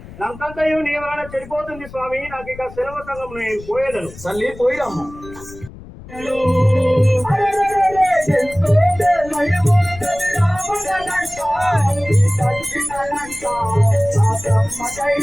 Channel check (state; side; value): noise; left; rumble, 17 dB below the sound